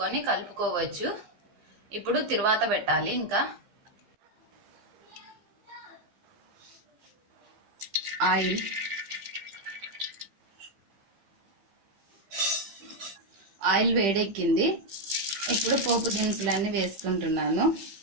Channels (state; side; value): late; left; 15 ms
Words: కలుపుకోవచ్చు. ఇప్పుడు తిరువాత పెట్టాలి. ఇంకా ఆయిల్ వేడెక్కింది. ఇప్పుడు పోపు దినుసులన్నీ వేసుకుంటున్నాను.